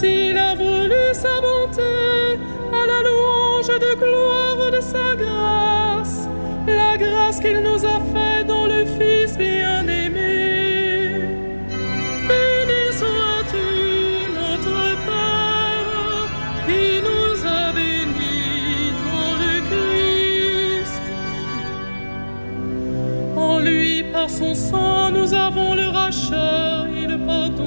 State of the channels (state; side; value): inverted; both; correlation -1.00